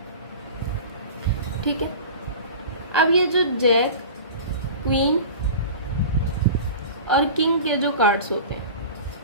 ठीक है? अब ये जो जैक, क्वीन और किंग के जो कार्ड्स होते हैं,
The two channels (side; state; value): both; inverted; correlation -0.36